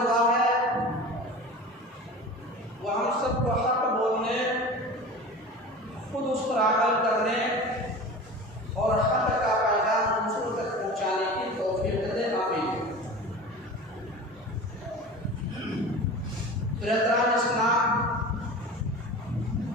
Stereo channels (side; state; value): both; normal; correlation 0.35